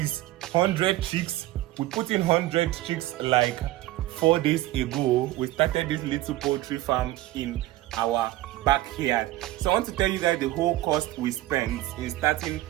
100 chicks. We put in 100 chicks like 4 days ago. We started this little poultry farm in our backyard. So I want to tell you guys the whole cost we spent in starting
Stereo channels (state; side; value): quieter; left; 16.4 dB